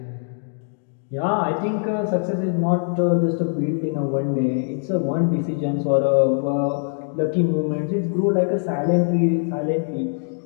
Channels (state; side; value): silent; right; 60 dB below the other